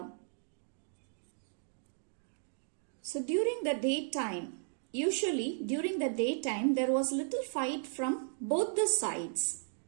So during the daytime, usually during the daytime, there was little fight from both the sides.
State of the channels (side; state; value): left; silent; digital silence